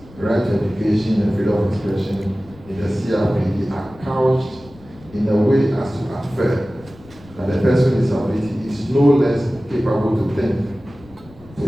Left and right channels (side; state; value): left; noise; rumble, 23 dB below the sound